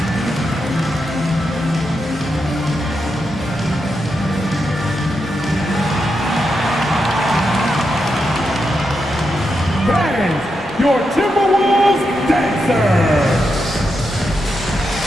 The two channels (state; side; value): normal; both; correlation 0.85